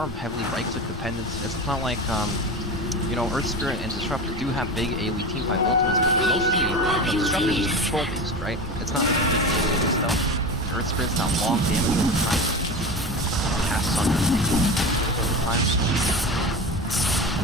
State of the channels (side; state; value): both; normal; correlation 0.27